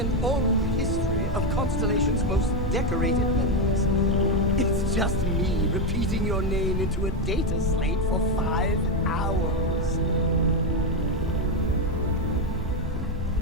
oral history of Constellation's most decorated members. It's just me repeating your name into a data slate for 5 hours.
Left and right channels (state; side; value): normal; both; correlation 0.07